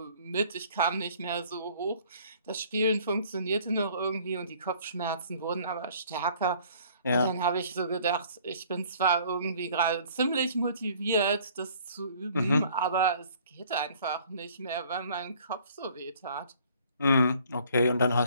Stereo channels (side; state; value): both; inverted; correlation -0.55